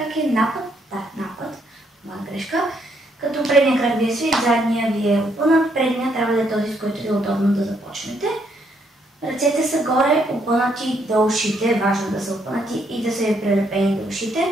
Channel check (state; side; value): normal; both; correlation 0.72